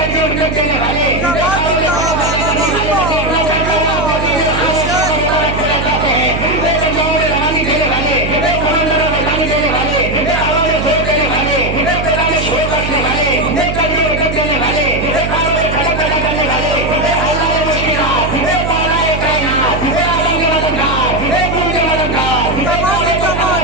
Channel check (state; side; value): noise; right; hum, 4 dB below the sound